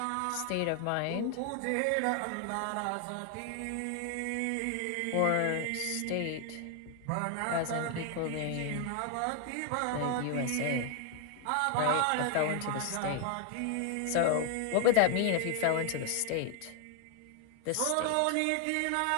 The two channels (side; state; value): both; different; correlation 0.00